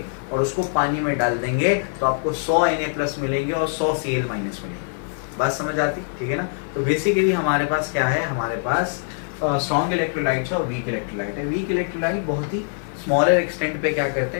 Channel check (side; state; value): right; silent; 55 dB below the other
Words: और उसको पानी में डाल देंगे तो आपको 100 Na+ मिलेंगे और 100 Cl- मिलेंगे। बात समझ आती? ठीक है ना? तो बेसिकली हमारे पास क्या है? हमारे पास स्ट्रॉन्ग इलेक्ट्रोलाइट है और वीक इलेक्ट्रोलाइट है। वीक इलेक्ट्रोलाइट बहुत ही स्मॉलर एक्सटेंट पे क्या करते